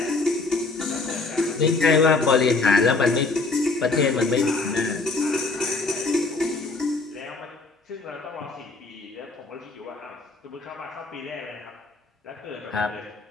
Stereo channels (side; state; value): right; quieter; 3.6 dB